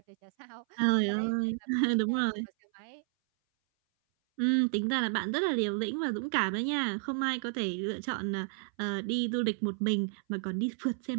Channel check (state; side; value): silent; left; 57 dB below the other